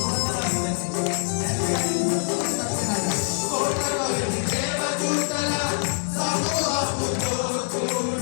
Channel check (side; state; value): right; silent; digital silence